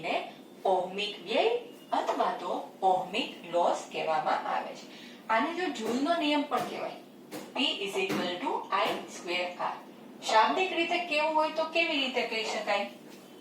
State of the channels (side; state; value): both; identical; correlation 1.00